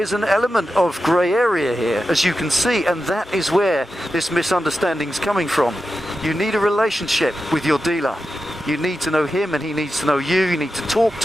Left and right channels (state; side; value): normal; both; correlation 0.90